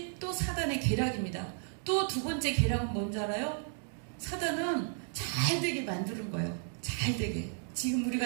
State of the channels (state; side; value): silent; left; 55 dB below the other